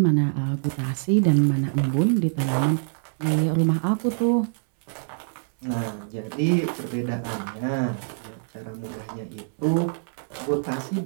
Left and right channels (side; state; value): left; silent; 62 dB below the other